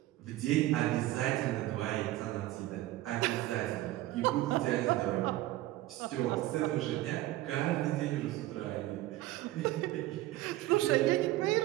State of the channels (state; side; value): quieter; left; 16.3 dB